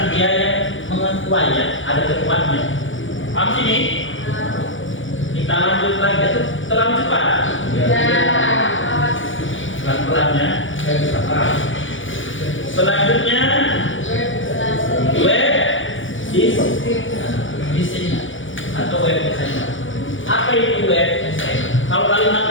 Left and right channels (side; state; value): right; late; 0.56 ms